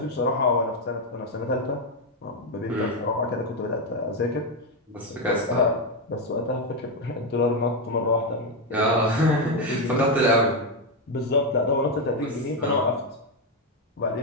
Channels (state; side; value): normal; both; correlation 0.06